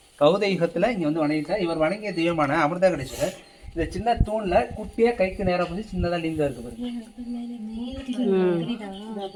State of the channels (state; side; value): identical; both; correlation 1.00